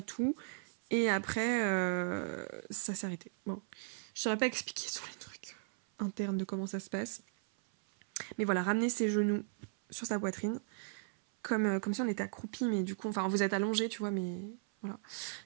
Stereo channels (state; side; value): silent; left; 53 dB below the other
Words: tout. Et après ça s'est arrêté. Bon, je saurais pas expliquer tous les trucs internes de comment ça se passe. Mais voilà, ramener ses genoux sur sa poitrine, comme si on était accroupi, mais du coup, enfin vous êtes allongé, tu vois, mais voilà.